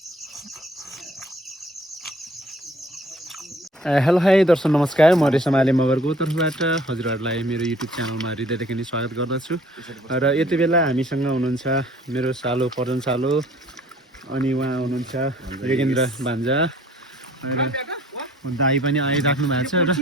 hi दर्शक नमस्कार, म रेशम आले मगरको तर्फबाट हजुरहरूलाई मेरो युट्युब च्यानलमा हृदयदेखि नै स्वागत गर्दछु। र यति बेला हामीसँग हुनुहुन्छ मेरो सालो पर्जन सालो, अनि उहाँ हुनुहुन्छ योगेन्द्र भान्जा, दाई पनि आइराख्नु भएको छ। र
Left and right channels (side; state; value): both; normal; correlation 0.55